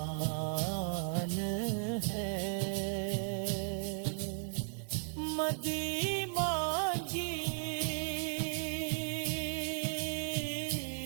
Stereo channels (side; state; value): left; silent; 54 dB below the other